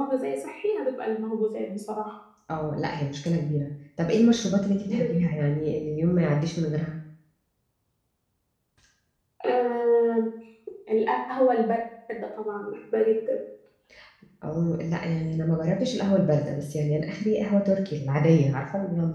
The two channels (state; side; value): identical; both; correlation 1.00